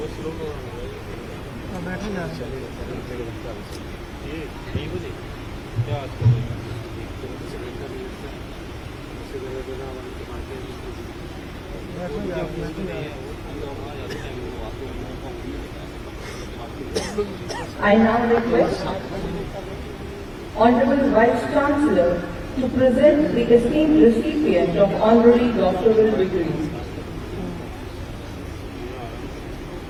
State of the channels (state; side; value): identical; both; correlation 1.00